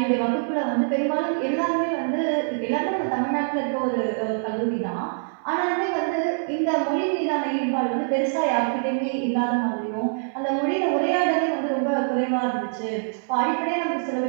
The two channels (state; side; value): silent; left; digital silence